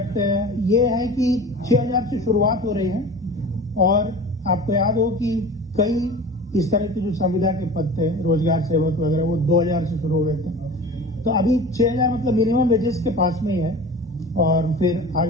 ये है कि 6000 से शुरुआत हो रही है। और आपको याद हो कि कई इस तरह के जो संविदा के पद थे, रोजगार सेवक वगैरह, वो 2000 से शुरू हो गए थे। तो अभी 6000 मतलब मिनिमम वेजेस के पास में ही है, और फिर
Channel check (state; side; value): normal; both; correlation 0.37